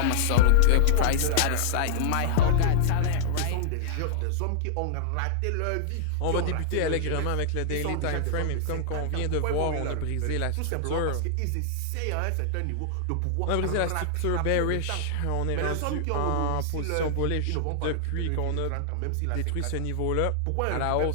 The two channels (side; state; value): both; different; correlation -0.01